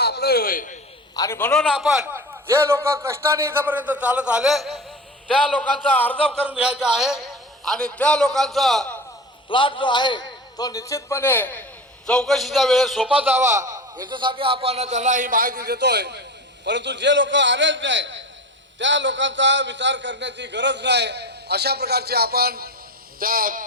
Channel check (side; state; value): both; normal; correlation 0.29